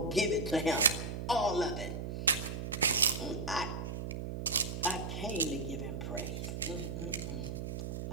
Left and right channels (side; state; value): right; noise; hum, 5 dB below the sound